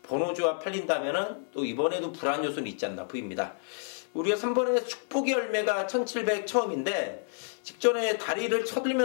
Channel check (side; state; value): right; silent; 56 dB below the other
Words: 번호조합 팔린다면은 또 이번에도 불안 요소는 있지 않나 보입니다. 우리가 3번에 축복의 열매가 1700 처음인데 직전에 다리를